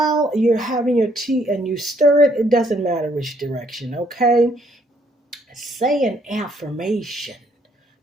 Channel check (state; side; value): normal; both; correlation 0.68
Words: you're having your tea and you stir it, it doesn't matter which direction. Okay, say an affirmation,